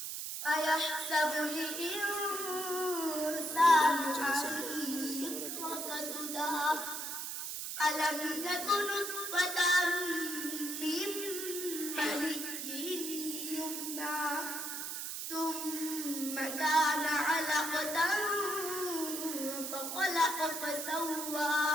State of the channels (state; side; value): noise; right; hiss, 5 dB below the sound